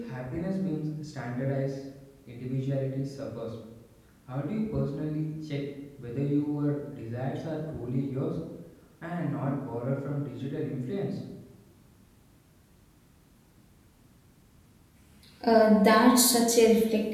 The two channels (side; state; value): both; identical; correlation 1.00